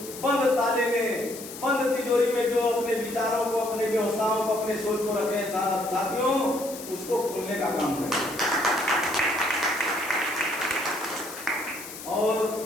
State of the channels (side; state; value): left; noise; hiss, 12 dB below the sound